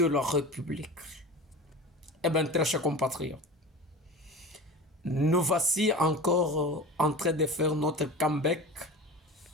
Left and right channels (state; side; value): normal; both; correlation 0.33